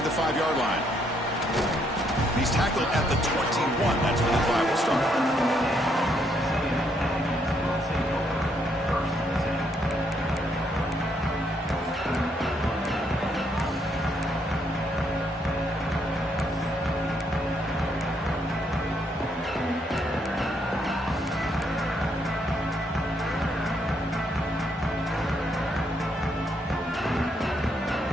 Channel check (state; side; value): normal; both; correlation 0.73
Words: the 5-yard line. He's tackled at the 21. That's where the drive will start.